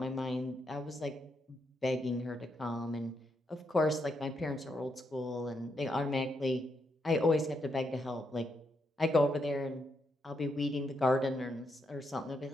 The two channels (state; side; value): normal; both; correlation 0.80